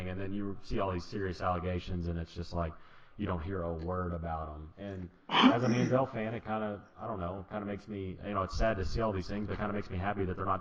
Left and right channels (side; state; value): both; identical; correlation 1.00